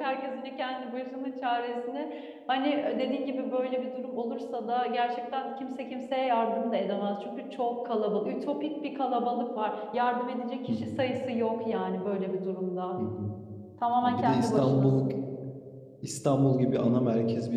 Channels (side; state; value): both; identical; correlation 1.00